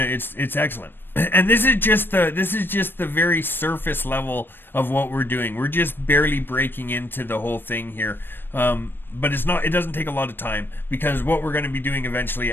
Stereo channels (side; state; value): right; late; 0.097 ms